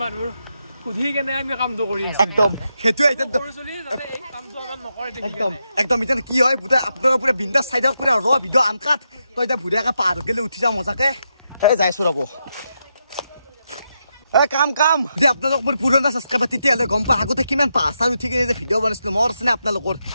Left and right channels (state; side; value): inverted; both; correlation -0.84